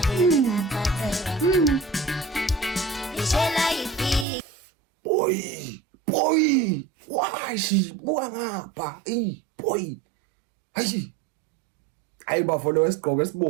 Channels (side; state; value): left; drops out; at 4.2 s